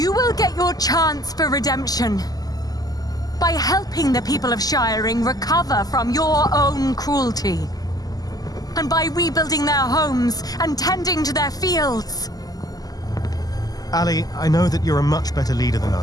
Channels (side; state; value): right; late; 0.18 ms